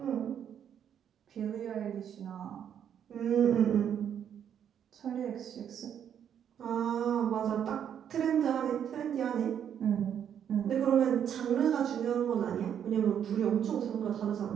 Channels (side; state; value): left; quieter; 9.0 dB